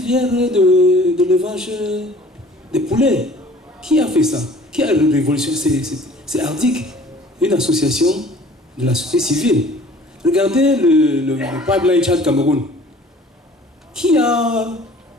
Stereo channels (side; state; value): both; normal; correlation 0.50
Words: de l'élevage des poulets. Qui a fait ça? Qui a révolutionné? C'est Ardic, une association de la société civile. Regardez le pipeline Tchad-Cameroun. Qui a